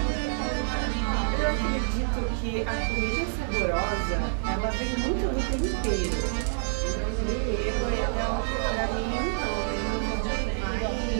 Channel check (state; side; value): silent; left; 60 dB below the other